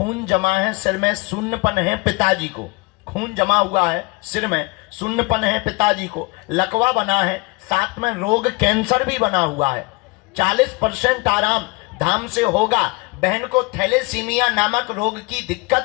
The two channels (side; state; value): right; quieter; 25.8 dB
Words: जमा है, सिर में शून्यपन है पिताजी को। खून जमा हुआ है, सिर में शून्यपन है पिताजी को। लकवा बना है, साथ में रोग कैंसर भी बना हुआ है। 40% आराम धाम से होगा। बहन को थैलेसीमिया नामक रोग की